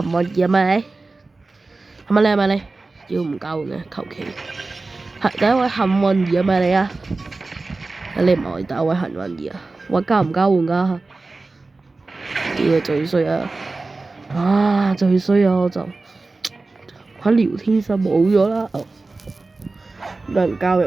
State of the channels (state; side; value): quieter; left; 3.5 dB